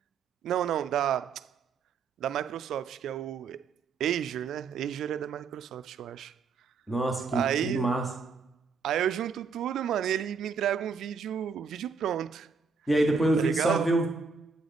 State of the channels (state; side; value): quieter; left; 5.0 dB